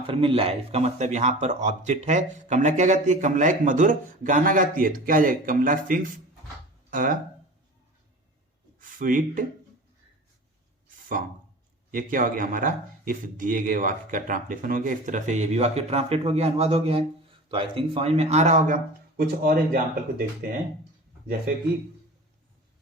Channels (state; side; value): normal; both; correlation 0.37